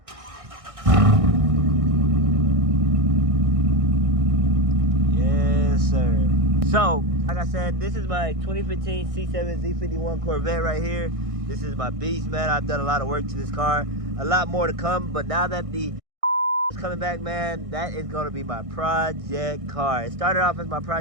Yes, sir. So, like I said, this is my 2015 C7 Z51 Corvette right here. This is my beast, man. I've done a lot of work to this car. A lot more to come, but now that the is coming back, man, that is going to be my project car. It started off as my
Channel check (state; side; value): late; left; 1.6 ms